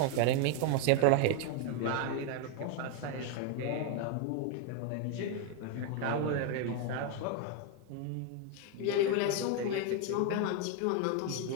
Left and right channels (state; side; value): different; both; correlation 0.01